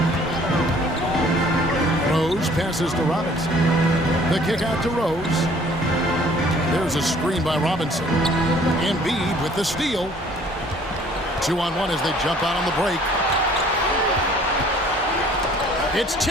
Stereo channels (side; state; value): both; normal; correlation 0.56